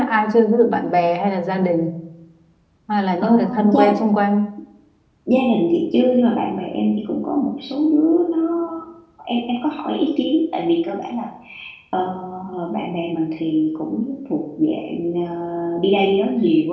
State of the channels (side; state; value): both; identical; correlation 1.00